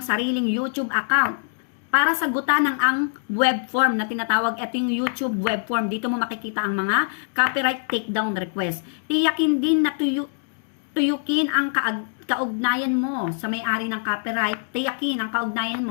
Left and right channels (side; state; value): right; silent; digital silence